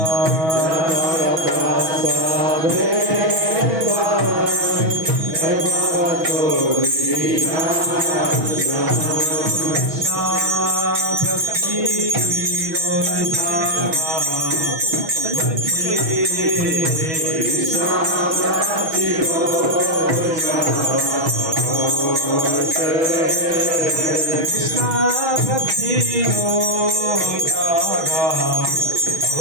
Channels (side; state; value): left; late; 6.2 ms